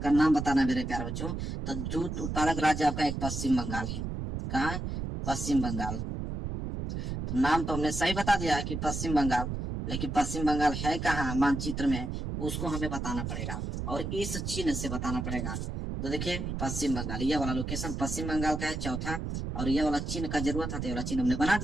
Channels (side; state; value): right; noise; rumble, 4 dB below the sound